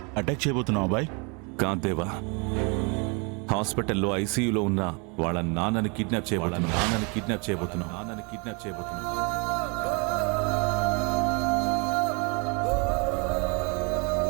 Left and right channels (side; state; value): left; quieter; 32.5 dB